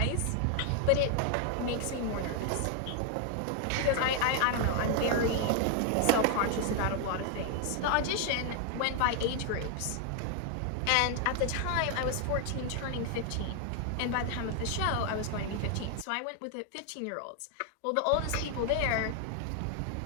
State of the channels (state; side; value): different; both; correlation 0.00